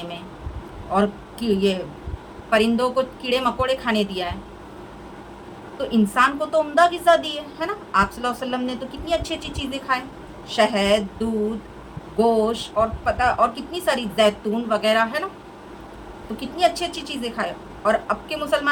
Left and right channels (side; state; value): both; identical; correlation 1.00